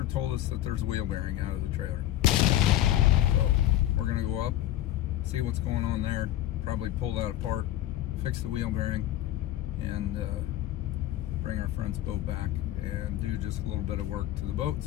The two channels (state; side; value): quieter; right; 13.5 dB